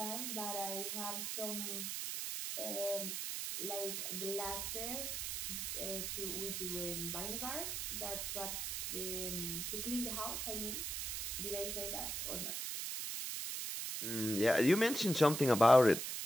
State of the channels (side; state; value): right; noise; hiss, 2 dB below the sound